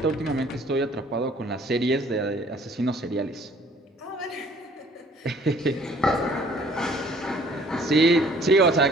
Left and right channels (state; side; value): normal; both; correlation 0.57